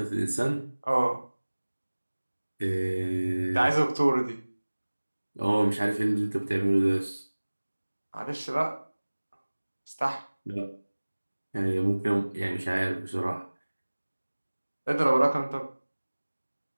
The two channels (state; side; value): inverted; both; correlation -1.00